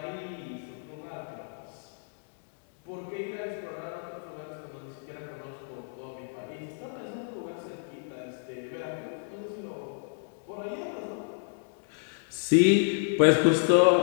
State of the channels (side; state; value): right; silent; digital silence